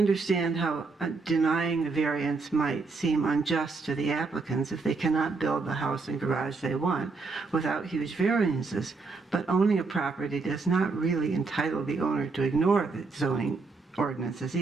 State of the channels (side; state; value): left; quieter; 4.1 dB